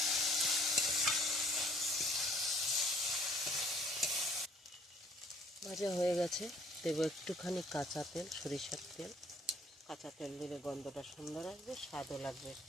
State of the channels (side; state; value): both; normal; correlation 0.58